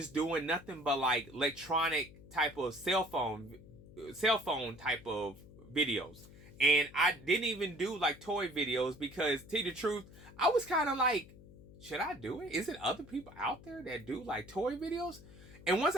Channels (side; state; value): left; noise; hum, 20 dB below the sound